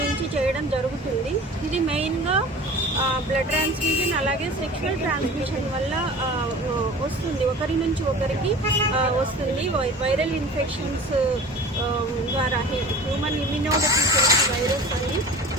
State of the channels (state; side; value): normal; both; correlation 0.40